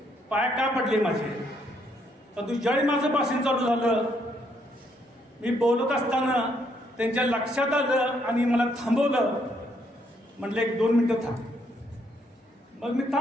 पाय का पडले माझे. परंतु ज्यावेळी माझं भाषण चालू झालं, मी बोलत असताना त्यांच्या लक्षात आलं आणि मला थांबवलं. म्हटलं 1-2 मिनिटं थांब. मग मी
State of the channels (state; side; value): normal; both; correlation 0.72